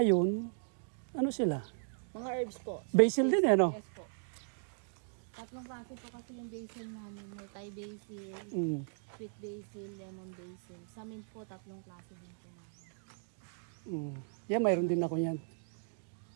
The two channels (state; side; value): silent; left; digital silence